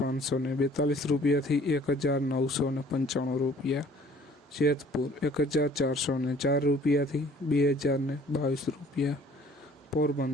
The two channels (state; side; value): normal; both; correlation 0.54